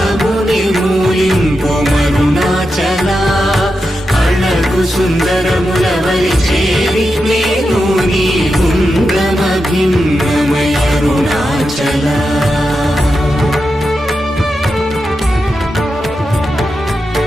మూలింపు మరుణాచల అళగు సుందరముల వలి చేరి నేను నీ గుండ్రమ భిన్నమయ అరుణాచల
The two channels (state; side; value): normal; both; correlation 0.88